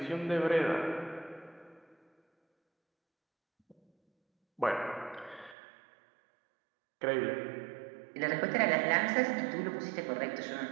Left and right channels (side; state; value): left; drops out; at 5.6 s